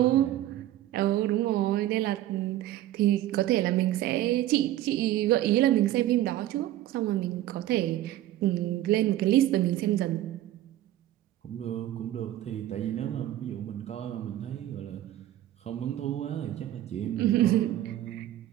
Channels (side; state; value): left; quieter; 13.8 dB